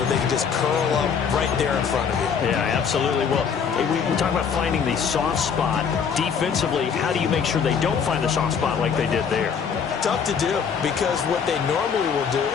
they can just curl up right there in front of you. Yeah, absolutely. Well, we talk about finding the soft spot. Defensively, how do you make sure they don't find the soft spot like they did there? Tough to do, because what they normally will do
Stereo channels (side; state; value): right; quieter; 6.7 dB